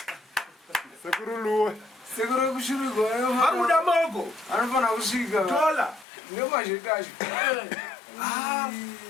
sekuru Louis sekuru kushurugwa vari kuda mogo anofana kusvika tola nemazhetacho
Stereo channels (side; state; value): right; drops out; at 6.1 s